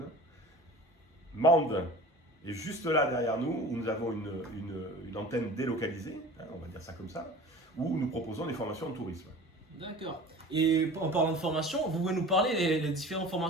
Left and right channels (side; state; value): both; normal; correlation 0.39